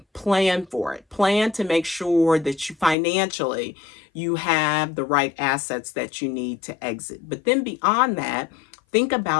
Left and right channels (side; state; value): right; drops out; at 3.0 s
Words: Plan for it. Plan to make sure that you financially you have the right assets that you need to exit. But then beyond that, think